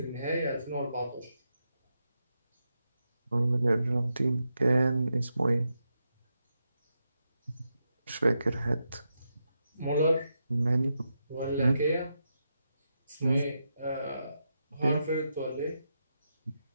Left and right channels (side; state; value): both; inverted; correlation -0.85